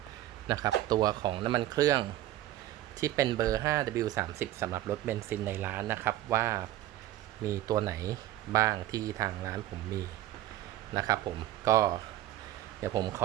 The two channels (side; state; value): left; quieter; 14.1 dB